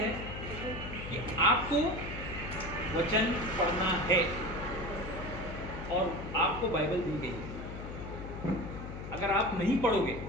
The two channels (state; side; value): noise; left; hum, 9 dB below the sound